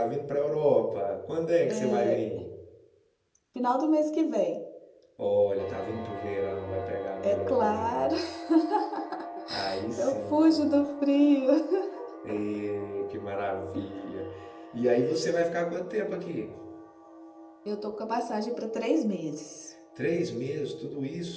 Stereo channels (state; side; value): identical; both; correlation 1.00